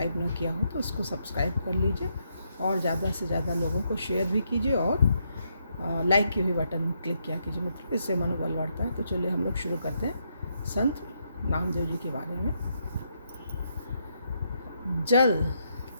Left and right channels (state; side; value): inverted; both; correlation -0.78